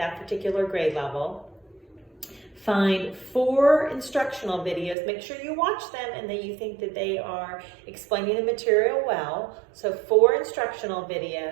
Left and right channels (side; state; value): left; drops out; at 5.0 s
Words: particular grade level. Find 4 instructional videos. Make sure you watch them and that you think that they are explaining the material well. So 4 instructional